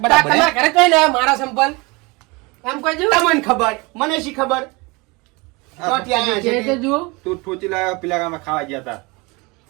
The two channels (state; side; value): quieter; left; 26.1 dB